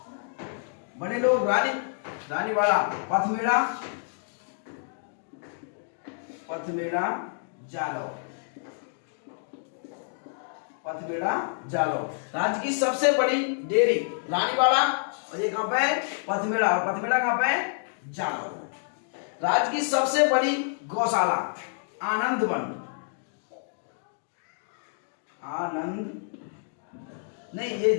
बड़े लोग। रानीवाड़ा, पथमेड़ा जालौर। राज्य की सबसे बड़ी डेयरी रानीवाड़ा, और ये कहां पे है? पथमेड़ा कहां पे है? जालौर। राज्य की सबसे बड़ी गौशाला आनंदवन नहीं, ये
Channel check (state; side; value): silent; right; digital silence